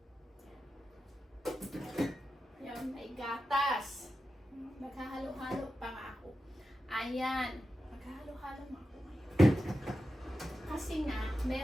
Ayan, may gatas. Naghahalo-halo pa nga ako. Ayan. Naghahalo-halo nga ako ngayon. Kasi nga,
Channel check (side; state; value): both; normal; correlation 0.91